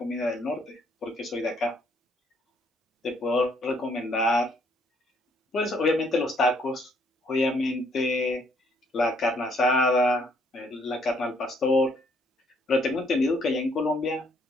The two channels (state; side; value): normal; both; correlation 0.67